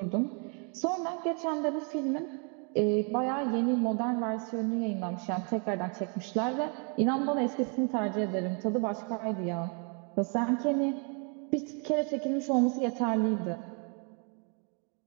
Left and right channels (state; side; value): quieter; left; 38.4 dB